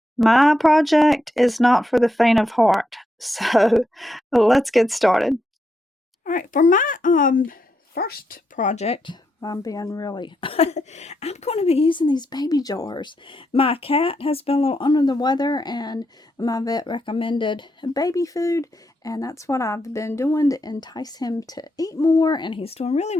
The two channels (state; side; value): normal; both; correlation 0.82